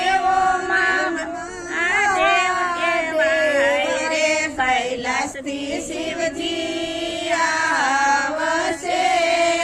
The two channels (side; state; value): both; identical; correlation 1.00